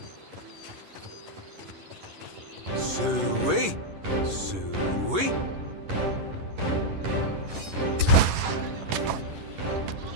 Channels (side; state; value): left; late; 11 ms